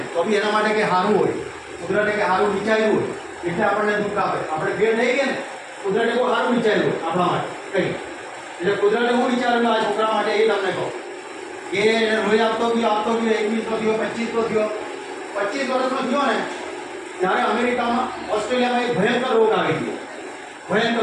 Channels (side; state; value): both; identical; correlation 1.00